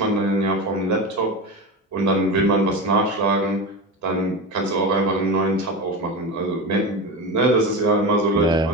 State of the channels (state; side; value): normal; both; correlation 0.23